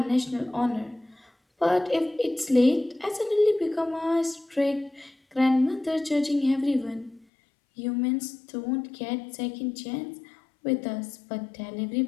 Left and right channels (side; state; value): right; drops out; at 7.2 s